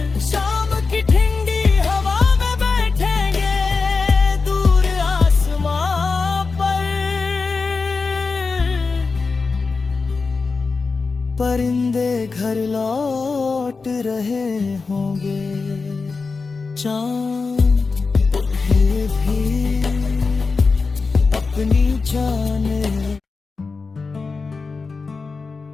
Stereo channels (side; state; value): right; quieter; 4.4 dB